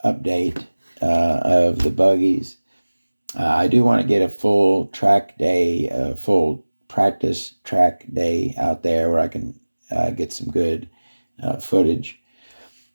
update of the buggies. I do want to get a full track day, full practice track day out there where I can get some good footage.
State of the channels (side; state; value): both; inverted; correlation -1.00